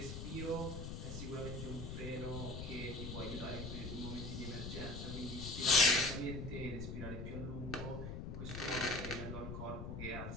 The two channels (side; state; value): left; noise; rumble, 6 dB below the sound